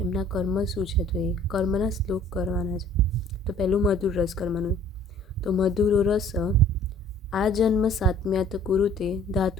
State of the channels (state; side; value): normal; both; correlation 0.53